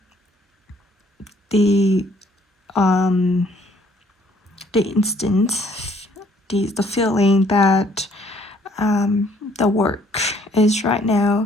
the instant, the feeling that the work is right now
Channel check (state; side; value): normal; both; correlation 0.63